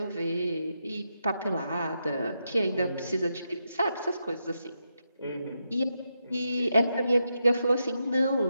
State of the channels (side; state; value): both; inverted; correlation -0.84